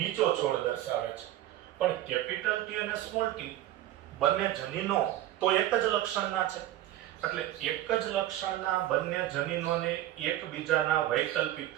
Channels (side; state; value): left; quieter; 13.9 dB